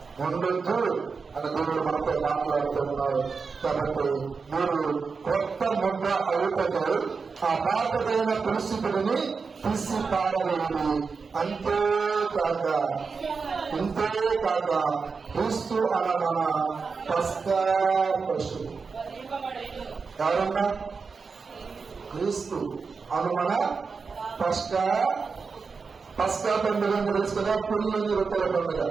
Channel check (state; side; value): quieter; left; 5.0 dB